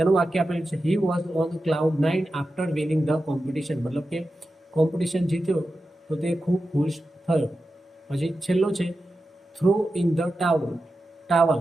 વાક્ય આપેલું છે he was on cloud 9 after winning the competition. મતલબ કે કોમ્પિટિશન જીત્યો તો તે ખૂબ ખુશ થયો. પછી છેલ્લો છે થ્રો ઇન ધ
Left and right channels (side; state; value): both; normal; correlation 0.92